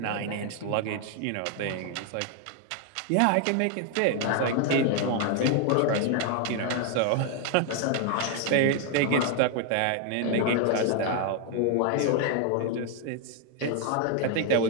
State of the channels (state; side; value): different; both; correlation 0.00